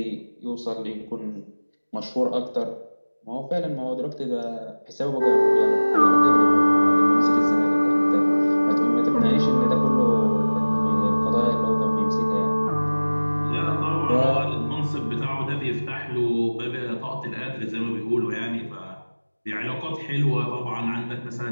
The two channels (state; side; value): inverted; both; correlation -1.00